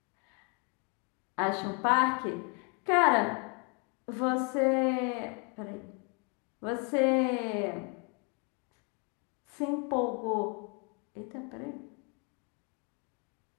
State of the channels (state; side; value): quieter; right; 34.5 dB